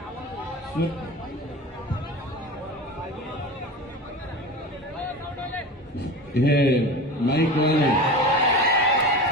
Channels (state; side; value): normal; both; correlation 0.31